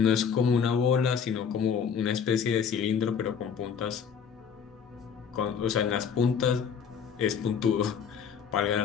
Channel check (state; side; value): quieter; right; 7.0 dB